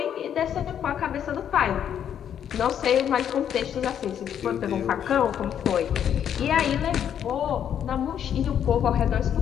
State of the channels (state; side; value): quieter; right; 9.2 dB